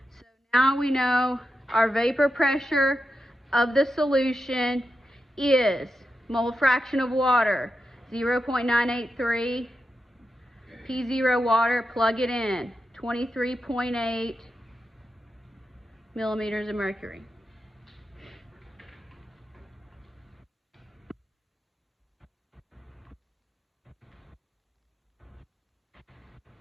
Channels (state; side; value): normal; both; correlation 0.89